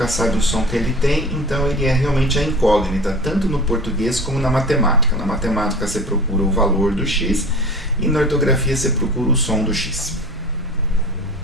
sabe o som que ele tem, então ele é realmente a incógnita, tanto no português como na matemática. Na matemática você procura o valor do X e na ortografia você procura o som do X.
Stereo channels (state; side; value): normal; both; correlation 0.38